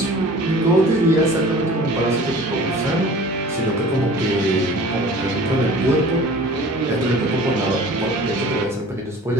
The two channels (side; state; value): both; normal; correlation 0.44